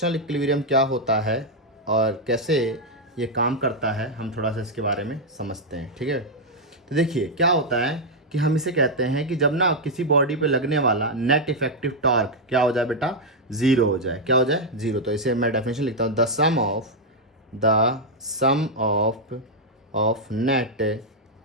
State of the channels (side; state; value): both; normal; correlation -0.01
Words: इक्विलिब्रियम क्या होता है और कैसे ये काम करता है, हम थोड़ा सा इसके बारे में समझते हैं, ठीक है। तो देखिए क्या होता है कि हम इसे कहते हैं कि जब ना किसी बॉडी पे लगने वाला नेट इफेक्टिव टॉर्क क्या हो जाए बेटा, ज़ीरो हो जाए। क्या हो जाए? ज़ीरो। तो इसे मैं डेफिनेशन लिखता हूँ, the sum of net